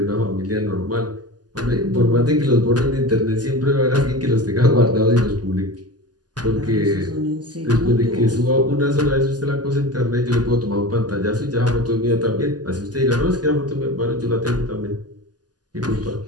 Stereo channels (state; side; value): late; left; 0.69 ms